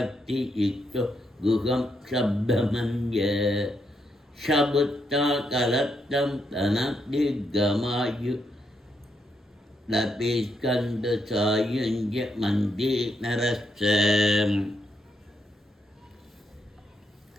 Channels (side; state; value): both; normal; correlation 0.79